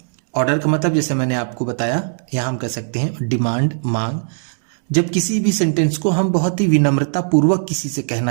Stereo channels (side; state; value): left; silent; 67 dB below the other